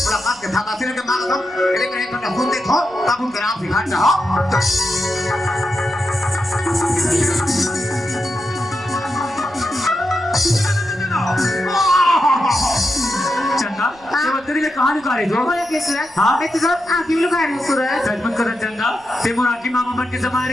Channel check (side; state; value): right; noise; rumble, 27 dB below the sound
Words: काम के था काफी लगे मांग हम लेकिन एक घंटा सुन देखो तब उनके नाम सिखा रहा चंदा ये बत्तरी ले कहां लुका रही हो बोला कि सूरज हाँ? मैं तो सब आंखें लुका रही हूँ सूरज सच मत कर चंदा ते मोर आकी मामा मन के